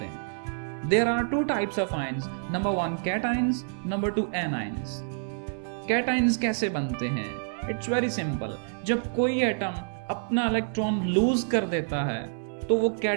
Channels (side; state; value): left; silent; 60 dB below the other